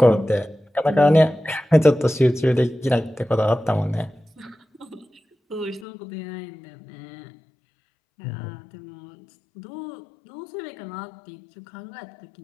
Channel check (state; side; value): drops out; right; at 5.9 s